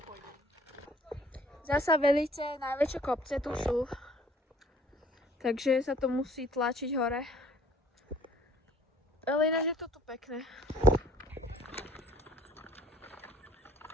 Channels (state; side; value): normal; both; correlation 0.54